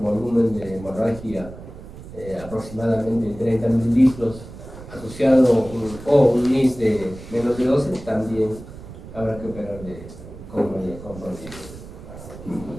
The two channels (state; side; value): noise; right; rumble, 15 dB below the sound